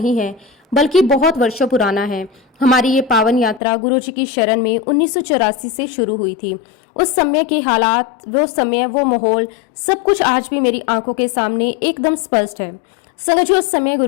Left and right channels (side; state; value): right; drops out; at 3.6 s